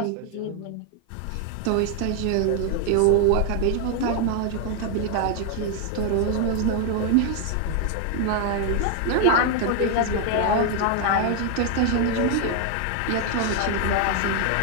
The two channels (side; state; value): both; different; correlation 0.00